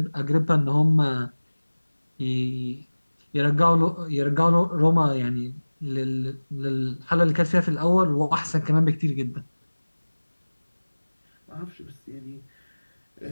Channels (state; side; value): inverted; both; correlation -1.00